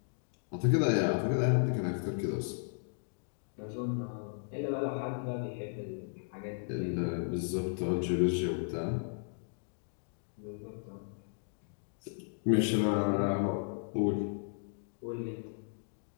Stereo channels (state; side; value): silent; right; digital silence